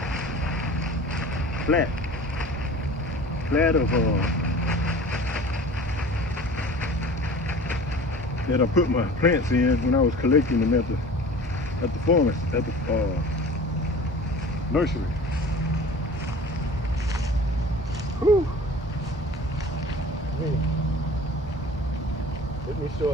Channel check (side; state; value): both; normal; correlation 0.42